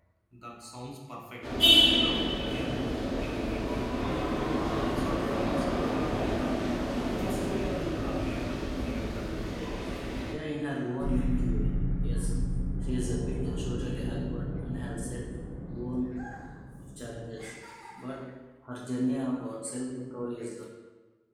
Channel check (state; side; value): identical; both; correlation 1.00